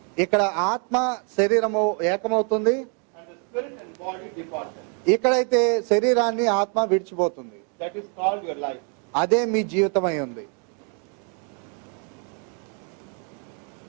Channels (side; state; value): left; quieter; 39.3 dB